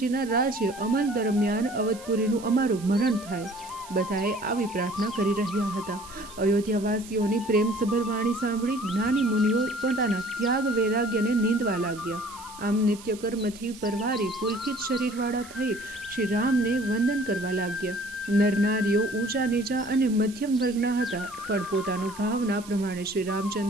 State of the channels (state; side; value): noise; right; hiss, 19 dB below the sound